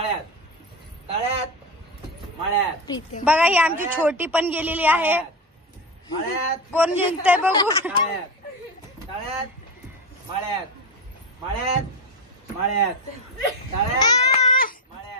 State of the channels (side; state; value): both; normal; correlation 0.17